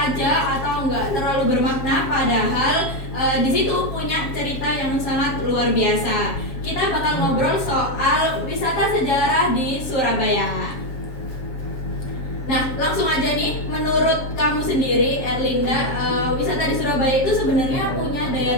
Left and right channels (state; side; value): late; right; 7.3 ms